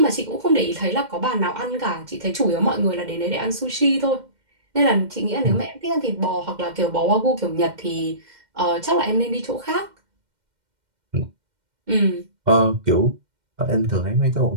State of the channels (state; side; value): late; left; 2.1 ms